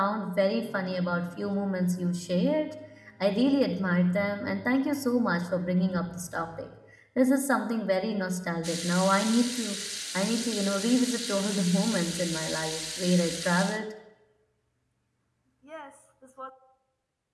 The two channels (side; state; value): both; identical; correlation 1.00